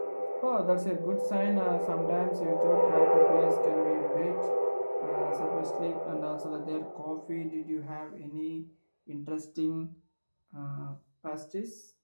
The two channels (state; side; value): inverted; both; correlation -1.00